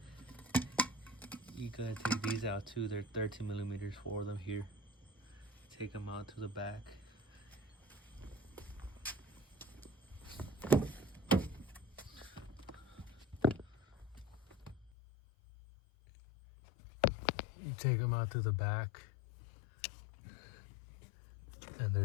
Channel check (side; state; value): right; drops out; at 14.9 s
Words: take these out too. They're 13mm, 4 of them here. Take them out to the back. You take them out to the back, and